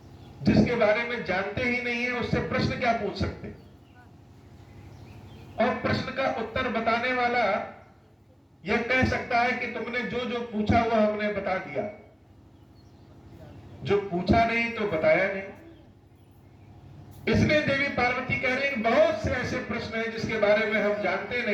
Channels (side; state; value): both; identical; correlation 1.00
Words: जिसके बारे में जानते ही नहीं है उससे प्रश्न क्या पूछ सकते? और प्रश्न का उत्तर बताने वाला यह कह सकता है कि तुमने जो जो पूछा वह हमने बता दिया, जो पूछा नहीं तो बताया नहीं। इसलिए देवी पार्वती कह रही हैं बहुत से ऐसे प्रश्न हैं जिसके बारे में हम जानते